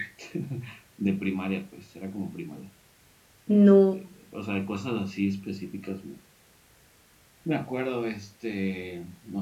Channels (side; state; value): both; identical; correlation 1.00